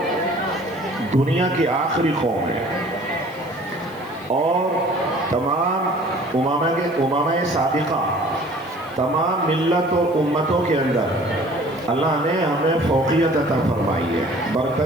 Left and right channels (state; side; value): noise; left; hiss, 26 dB below the sound